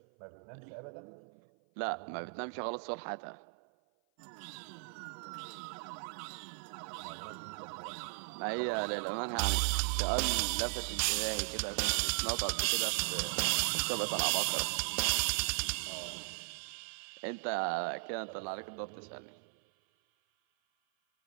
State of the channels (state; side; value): silent; left; 53 dB below the other